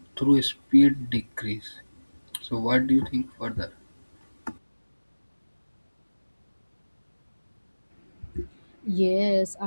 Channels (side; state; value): both; inverted; correlation -1.00